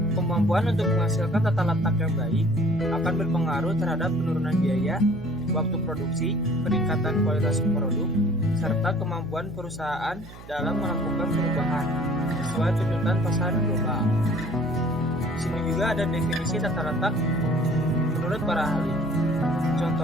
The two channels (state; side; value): noise; right; hum, 17 dB below the sound